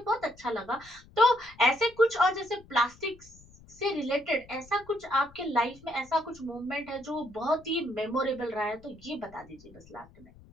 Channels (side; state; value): left; noise; rumble, 24 dB below the sound